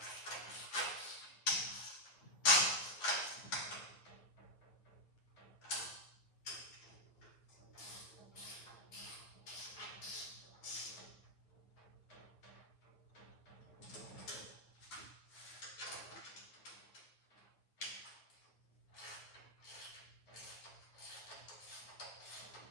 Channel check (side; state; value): right; late; 9.6 ms